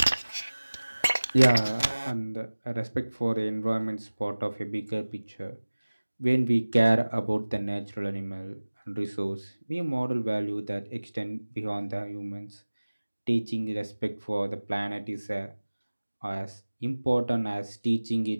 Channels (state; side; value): inverted; both; correlation -1.00